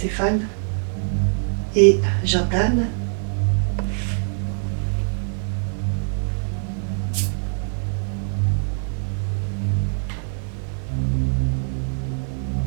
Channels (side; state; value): left; silent; 57 dB below the other